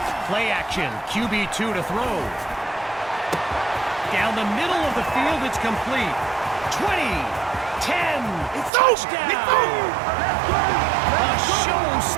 Play action, QB2 to throw. Down the middle of the field, it's complete. 20, 10, touchdown! A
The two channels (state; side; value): drops out; left; at 8.7 s